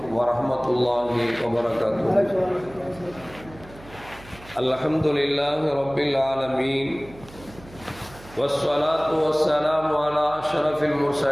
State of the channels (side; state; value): right; noise; hum, 20 dB below the sound